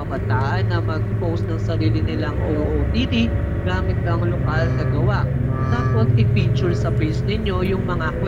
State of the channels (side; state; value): both; identical; correlation 1.00